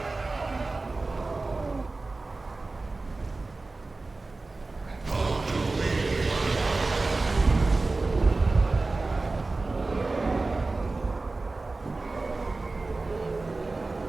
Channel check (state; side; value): quieter; left; 3.4 dB